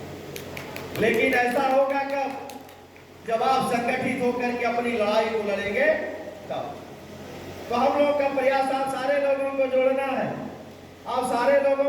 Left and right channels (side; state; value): both; identical; correlation 1.00